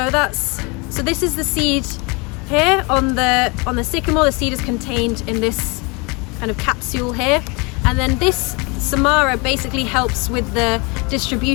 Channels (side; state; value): right; quieter; 29.3 dB